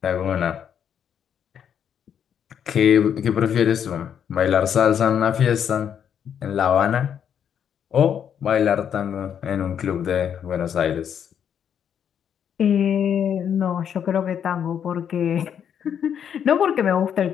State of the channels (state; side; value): quieter; right; 8.5 dB